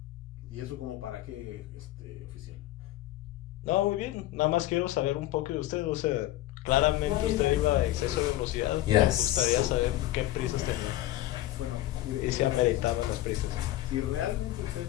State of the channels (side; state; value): right; quieter; 15.1 dB